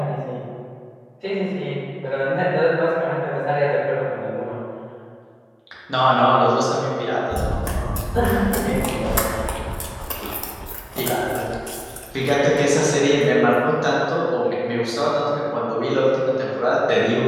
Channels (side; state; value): both; identical; correlation 1.00